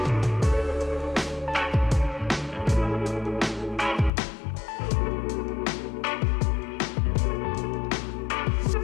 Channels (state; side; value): drops out; right; at 4.1 s